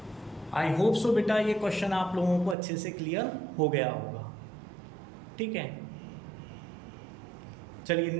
आई होप सो बेटा ये क्वेश्चन आप लोगों को अच्छे से क्लियर हो गया होगा, ठीक है। चलिए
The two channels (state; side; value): drops out; left; at 2.6 s